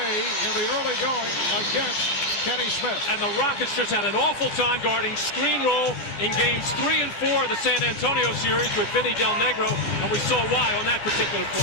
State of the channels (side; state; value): right; late; 12 ms